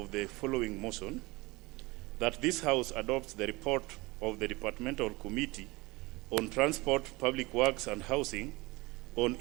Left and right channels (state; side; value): quieter; left; 23.1 dB